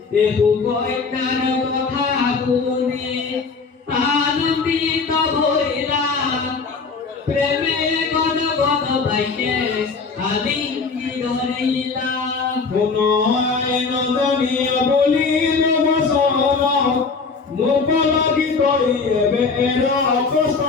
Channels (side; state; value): right; quieter; 4.7 dB